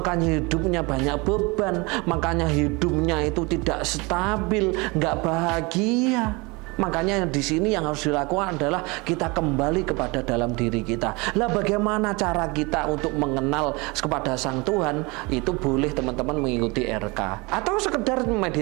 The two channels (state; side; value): quieter; left; 26.5 dB